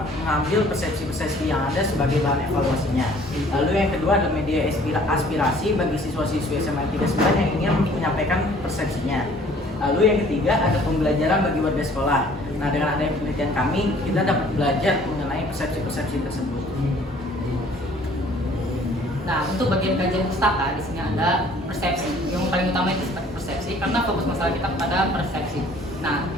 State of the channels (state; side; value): normal; both; correlation 0.55